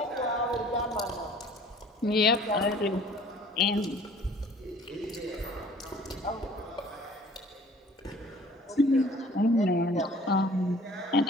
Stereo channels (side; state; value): both; normal; correlation 0.51